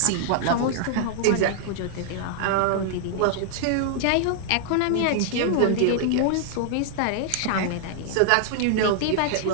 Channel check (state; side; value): different; both; correlation -0.01